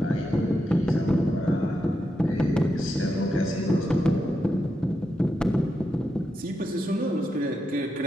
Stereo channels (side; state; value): both; normal; correlation 0.86